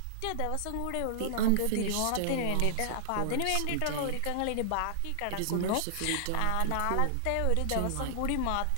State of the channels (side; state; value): both; different; correlation -0.01